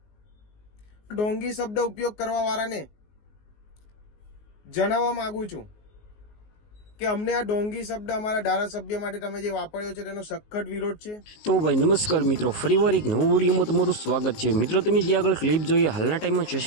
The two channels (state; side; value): late; right; 19 ms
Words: ઢોંગી શબ્દ ઉપયોગ કરવા વાળાને જણાવવા માંગુ છું કે અમને આ ઢોંગી શબ્દ અમારા ધારાસભ્ય માટે તમે જે વાપર્યો છે તેનો સખત વિરોધ છે. તો ભાઈ નમસ્કાર મિત્રો, ફરીવાર એક નવો વિડીયોમાં તમારું સ્વાગત છે. મિત્રો તમે જે આગળ ક્લિપ જોઈએ હાલના ટાઈમમાં